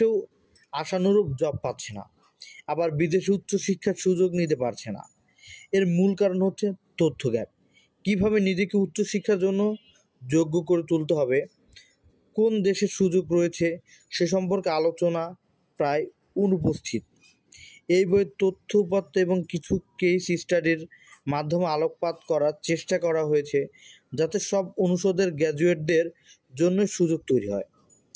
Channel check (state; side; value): identical; both; correlation 1.00